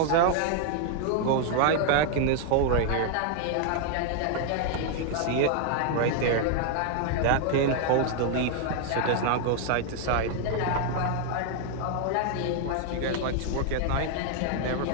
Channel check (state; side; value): different; both; correlation 0.00